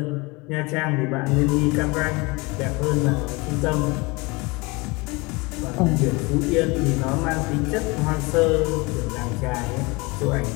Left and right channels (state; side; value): quieter; right; 25.7 dB